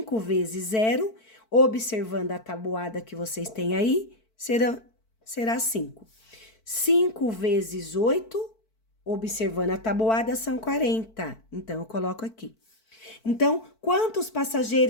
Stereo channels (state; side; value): late; right; 4.5 ms